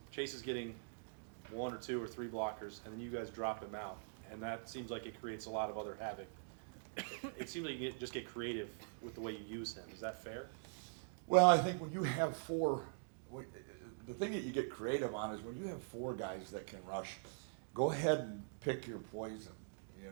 Chase is getting 1 or 2 or 3 blockers, and then you guys drop him out. And that seems like it creates a lot of other havoc. It seems like you just get creative with the way you use him. Is that fair? Well, I think when you have 4, the thing that you get creative on is when you have 4 guys that can rush, go ahead and pick your poison. You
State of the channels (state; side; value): silent; left; digital silence